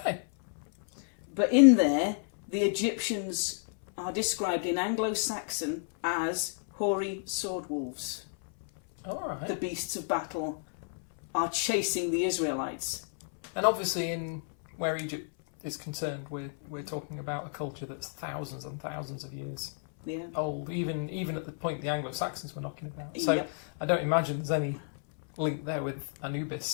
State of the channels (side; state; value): right; silent; 57 dB below the other